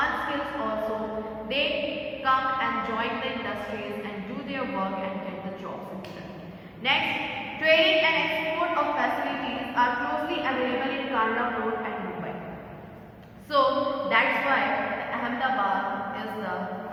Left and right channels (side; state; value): both; identical; correlation 1.00